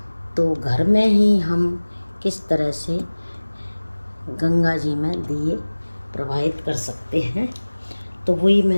तो घर में ही हम किस तरह से गंगा जी में दिए प्रवाहित कर सकते हैं, तो वही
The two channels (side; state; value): both; inverted; correlation -1.00